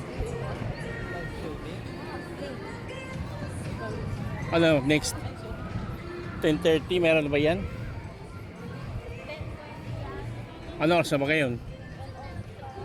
Ano, next 10:30, meron na ba yan? Ano oras na ba ngayon?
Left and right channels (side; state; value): both; identical; correlation 1.00